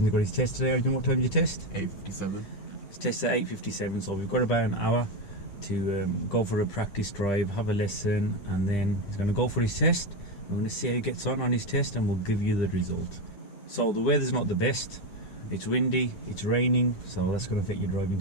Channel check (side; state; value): right; late; 10 ms